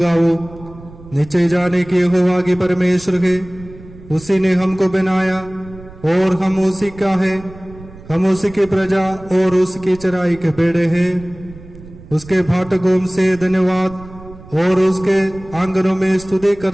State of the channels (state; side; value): noise; right; rumble, 19 dB below the sound